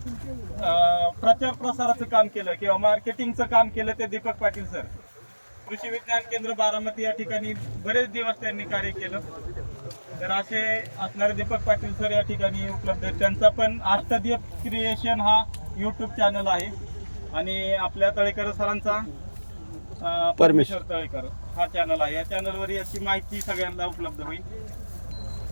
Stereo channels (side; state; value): both; inverted; correlation -1.00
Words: प्रचार प्रसाराचं काम केलं किंवा मार्केटिंगचं काम केलं ते दीपक पाटील सर. कृषी विज्ञान केंद्र बारामती या ठिकाणी बरेच दिवस त्यांनी कार्य केलं. तर असे असणारे दीपक पाटील सर या ठिकाणी उपलब्ध आहेत. त्यांचा पण अष्टदीप क्रिएशन हा यूट्यूब चॅनल आहे आणि आपल्या तळेकर सरांचा परमेश्वर तळेकर हा चॅनल आहे. या चॅनलवर याची माहिती सगळ्यांना उपलब्ध होईल.